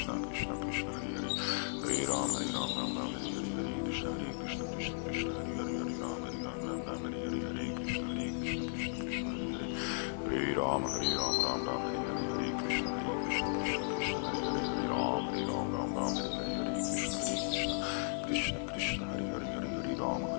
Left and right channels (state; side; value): silent; right; 54 dB below the other